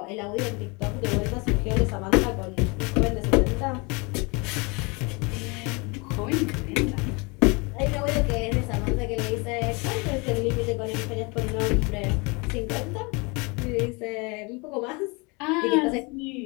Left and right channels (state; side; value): quieter; right; 28.9 dB